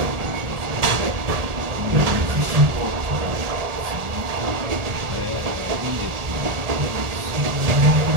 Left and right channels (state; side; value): late; left; 1.7 ms